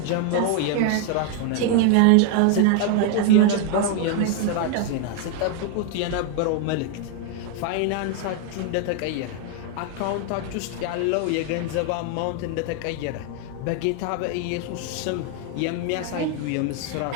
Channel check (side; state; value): both; different; correlation 0.00